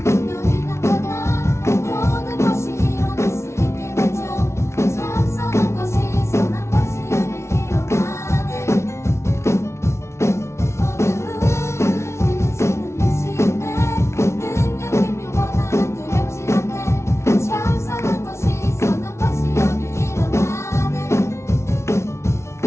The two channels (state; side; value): late; right; 0.13 ms